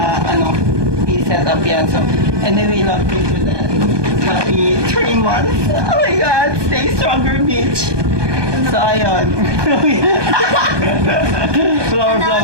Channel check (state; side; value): late; left; 1.2 ms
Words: i-set up yan. So anyway, love you to that. Happy 3 months. Oh my God, stay stronger, bitch. So ayun.